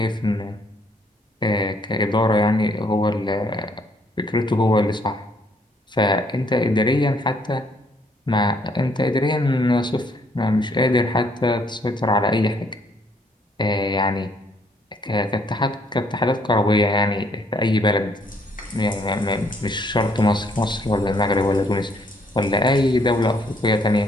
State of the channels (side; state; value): both; normal; correlation 0.67